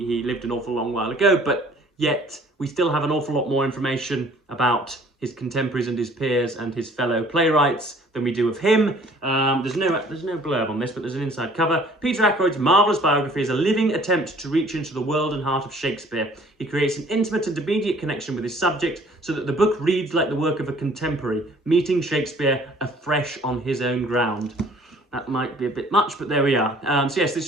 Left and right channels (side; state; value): both; normal; correlation 0.55